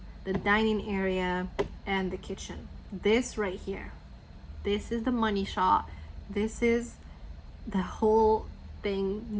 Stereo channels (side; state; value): both; identical; correlation 1.00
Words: the dining area and the kitchen. This right here, this is the money shot. This is the whole thing